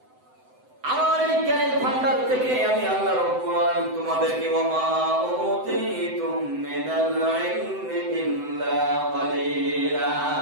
আমার এই জ্ঞানের ভান্ডার থেকে আমি আল্লাহ রাব্বুল আলামিন তোমাদেরকে ওয়ামা উতীতুম মিনাল ইলমি ইল্লা ক্বালিলা,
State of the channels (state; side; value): late; left; 7.9 ms